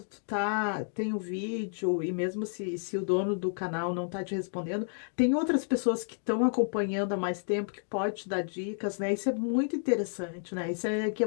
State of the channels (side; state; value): right; silent; digital silence